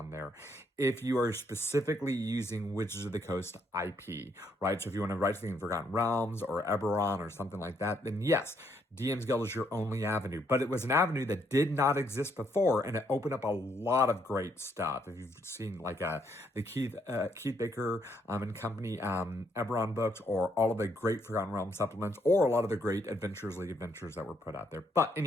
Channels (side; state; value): both; normal; correlation 0.72